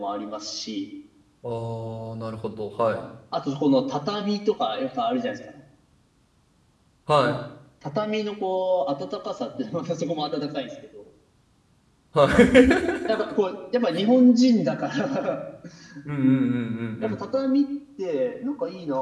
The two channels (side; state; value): both; identical; correlation 1.00